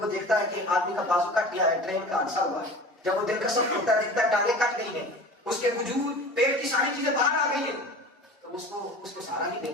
دیکھتا ہے کہ آدمی کا بازو کٹ گیا ہے, ٹرین کا حادثہ ہوا ہے. جب وہ دل کا سخت ہوتا ہے دیکھتا ہے ٹانگیں کٹ گئی ہیں, اس کے وجود پیٹ کی ساری چیزیں باہر آ گئی ہیں, تو اس کو سہارا نہیں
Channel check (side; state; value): both; normal; correlation 0.38